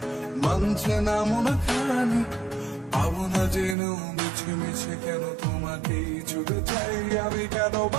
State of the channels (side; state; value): left; drops out; at 3.8 s